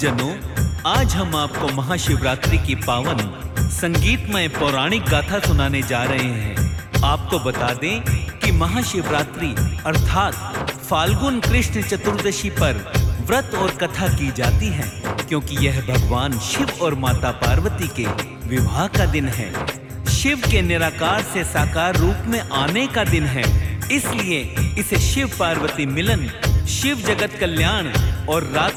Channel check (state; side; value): identical; both; correlation 1.00